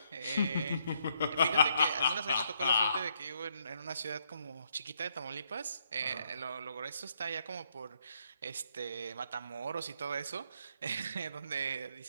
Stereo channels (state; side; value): inverted; both; correlation -0.73